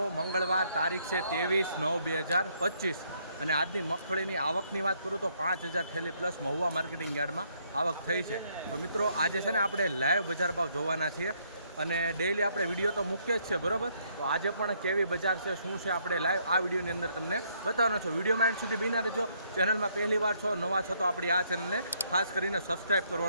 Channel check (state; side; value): inverted; both; correlation -0.70